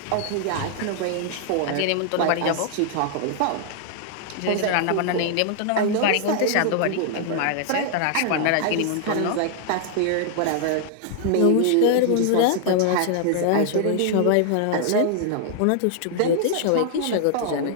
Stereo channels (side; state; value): both; different; correlation 0.00